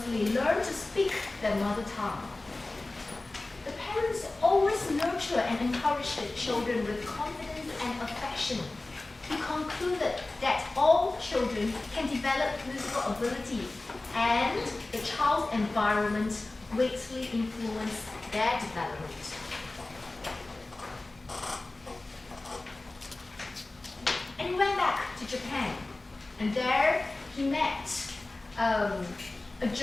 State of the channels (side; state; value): right; quieter; 3.0 dB